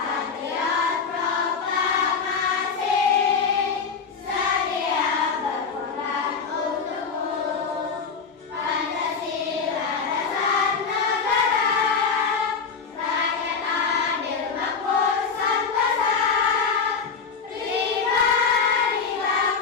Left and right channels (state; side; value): quieter; right; 5.5 dB